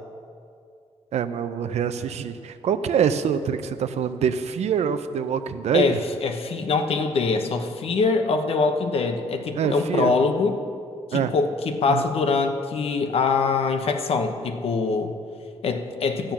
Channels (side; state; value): both; normal; correlation 0.48